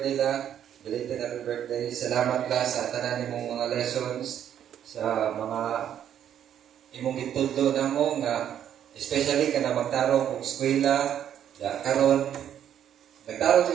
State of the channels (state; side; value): quieter; left; 9.9 dB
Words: la. Belated happy birthday. Salamat la sa tanan nimong mga lessons, sa mga imong gitudlo na mo nga, especially ka na magtarong kung eskwela, karon nagtarong